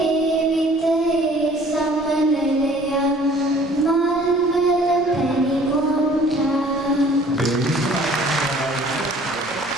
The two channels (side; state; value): both; normal; correlation 0.54